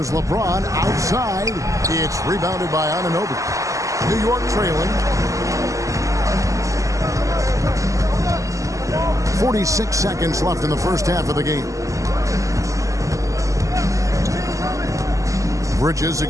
LeBron outside. It's rebounded by Anunoby. New York trailing. 46 seconds left in the first half of the game. Bridges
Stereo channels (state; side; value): late; left; 0.16 ms